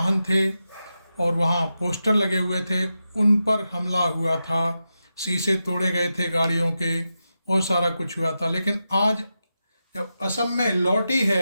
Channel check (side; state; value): both; inverted; correlation -0.90